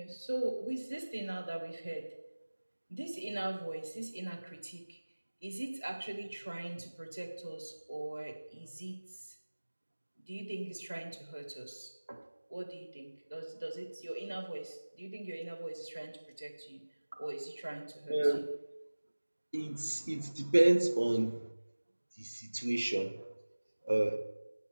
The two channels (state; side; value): inverted; both; correlation -1.00